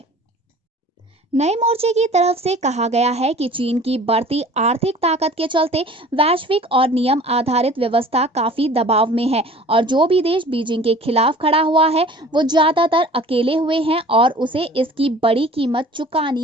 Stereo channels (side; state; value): both; normal; correlation 0.46